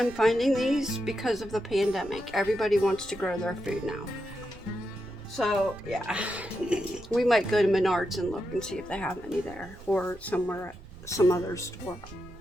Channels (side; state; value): right; noise; rumble, 18 dB below the sound